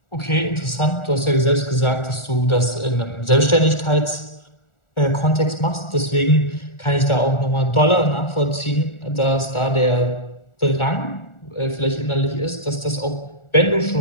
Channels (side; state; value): right; late; 1.4 ms